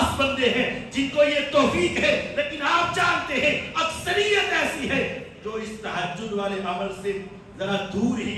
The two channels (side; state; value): both; identical; correlation 1.00